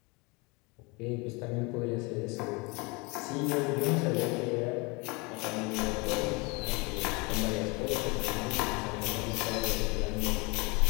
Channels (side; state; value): right; quieter; 27.9 dB